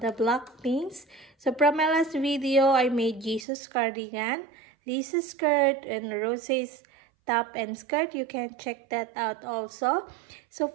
Blackpinks. So from my last video, I made Jesus cardigan, Lisa's skirt, and Rose's top and skirt. You can check that out also. So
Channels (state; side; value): drops out; left; at 3.5 s